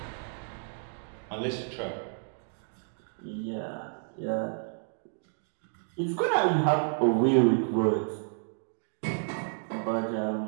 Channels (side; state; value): left; silent; 57 dB below the other